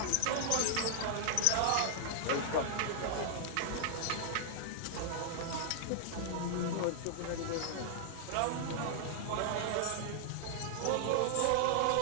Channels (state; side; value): different; both; correlation 0.00